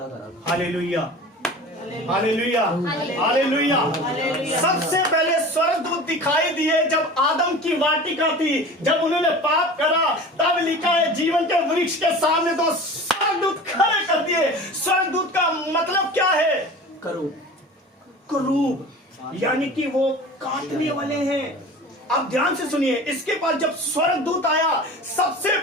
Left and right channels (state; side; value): normal; both; correlation 0.37